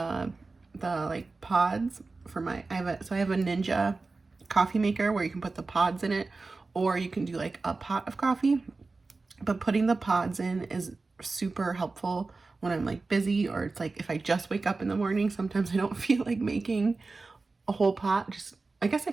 like pods for my, I have a Ninja coffee maker where you can put the pods in it, or you can do like a pot of coffee. But putting the pods in is super helpful when I'm like busy, or it's like if I just wake up in the morning, sometimes I don't feel like making a whole pot. Just, I guess I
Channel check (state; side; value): quieter; left; 3.8 dB